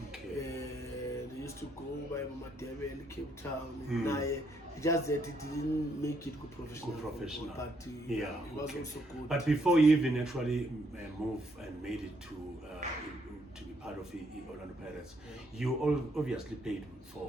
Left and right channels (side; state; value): both; normal; correlation 0.73